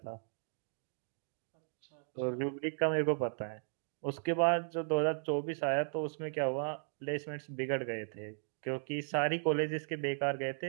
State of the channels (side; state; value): left; silent; digital silence